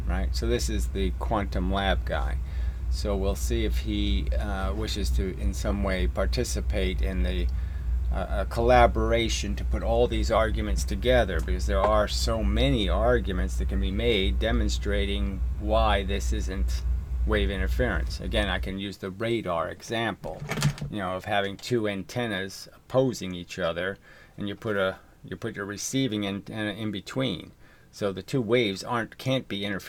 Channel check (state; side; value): identical; both; correlation 1.00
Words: right? So this is the quantum lab guy. So we'll see if he wishes to in some way participate in the a collaboration to put all these arguments together, because there are so many arguments that can be made demonstrating why this isn't wave interference. Again, I can use the radar example, of having two antennas opposing each other, and you put your receiving antenna in between, so the two waves can't be